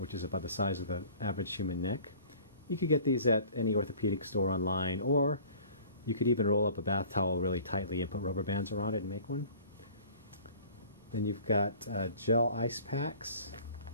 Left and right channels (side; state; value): both; inverted; correlation -0.48